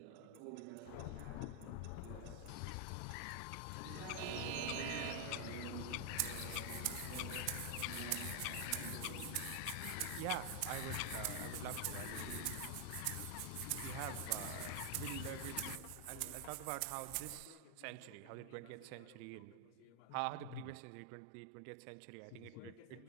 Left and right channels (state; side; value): different; both; correlation 0.00